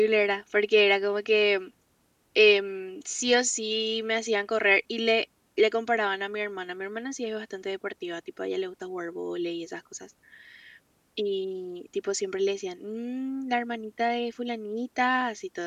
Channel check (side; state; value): both; identical; correlation 1.00